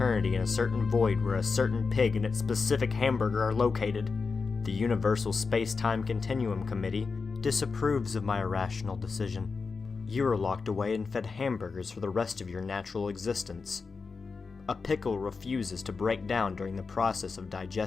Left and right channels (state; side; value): quieter; right; 4.7 dB